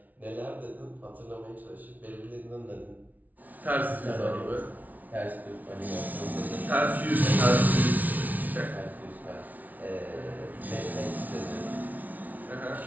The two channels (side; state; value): left; late; 0.077 ms